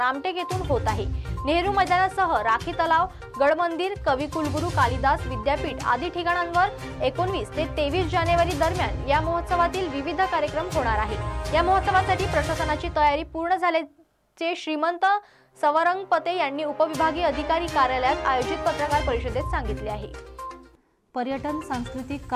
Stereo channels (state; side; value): identical; both; correlation 1.00